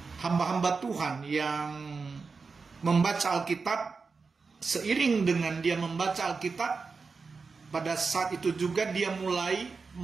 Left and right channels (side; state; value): left; quieter; 4.7 dB